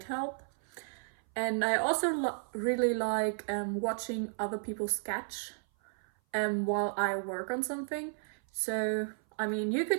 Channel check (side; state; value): left; silent; 56 dB below the other